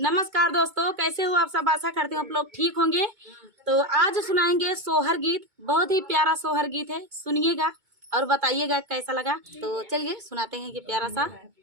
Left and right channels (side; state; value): left; late; 2.2 ms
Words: दोस्तों, कैसे हो आप सब। आशा करती हूँ आप लोग ठीक होंगे। तो आज सुनाएंगे सोहर गीत। बहुत ही प्यारा सोहर गीत है, सुनिएगा और बताइएगा कैसा लगा। तो चलिए सुनाते हैं ये प्यारा सा